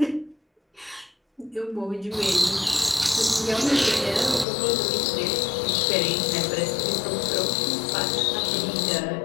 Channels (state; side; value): drops out; right; at 4.5 s